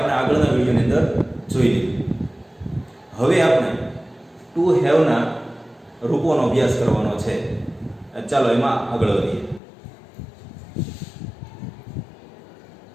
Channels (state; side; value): drops out; right; at 9.6 s